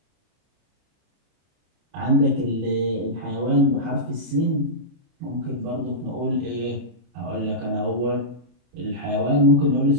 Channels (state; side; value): late; left; 33 ms